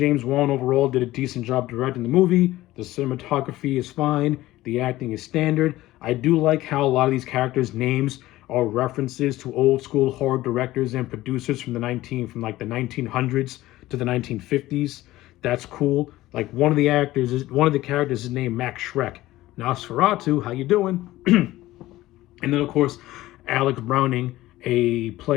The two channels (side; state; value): right; quieter; 16.6 dB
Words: Wan overall did a decent job directing the movie. The cinematography is fine. The acting is standard. I do like how a lot of these characters' names are references to old school horror directors and producers from the 1900s to the 1950s. That's cool. Like, one of the characters is named Max Schreck. Nosferatu, how you doing? And then, of course, Alex Browning, a